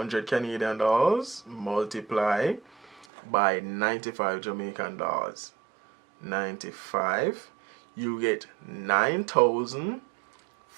Canadian dollars multiply by 95 Jamaican dollars. 95, you get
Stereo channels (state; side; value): drops out; left; at 3.1 s